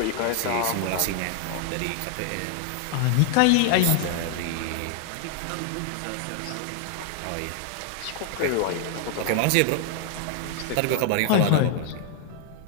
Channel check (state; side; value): different; both; correlation 0.00